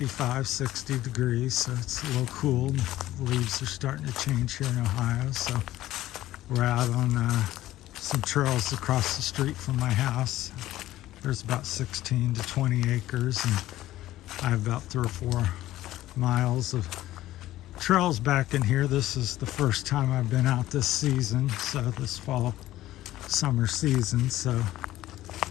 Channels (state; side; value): quieter; right; 14.9 dB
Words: 60 degrees, so it's a little cool. The leaves are starting to change here in Ohio, so we're out on some trails across the street from my house. There's about 16 to 20 acres, and I have about 3 or 4 miles of trails back in here. This is the first time I've been out this season, so this fall summer season, so